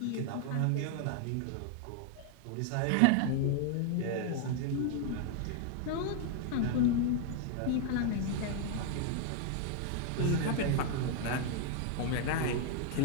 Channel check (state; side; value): different; both; correlation 0.00